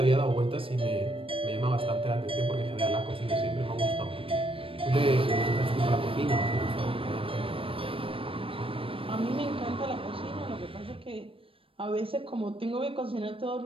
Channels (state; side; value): late; left; 0.26 ms